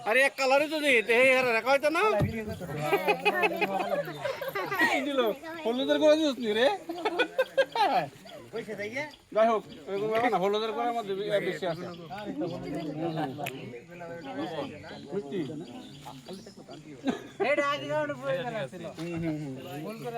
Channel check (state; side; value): identical; both; correlation 1.00